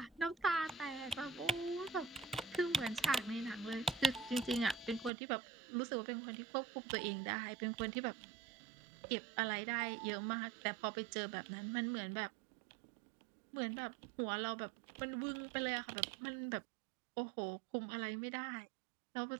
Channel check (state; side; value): drops out; left; at 5.1 s